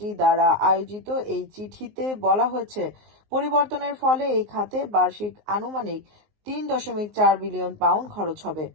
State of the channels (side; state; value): left; late; 19 ms